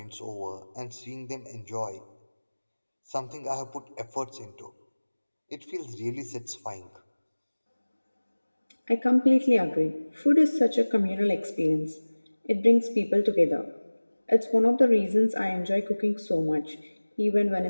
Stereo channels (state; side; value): inverted; both; correlation -1.00